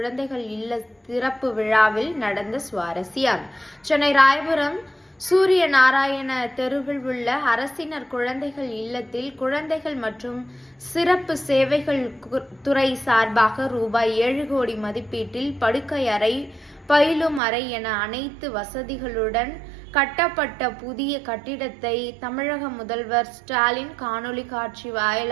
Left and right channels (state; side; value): drops out; left; at 17.4 s